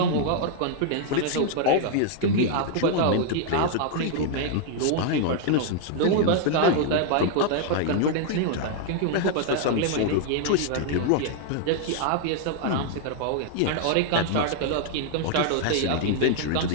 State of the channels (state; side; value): different; both; correlation 0.00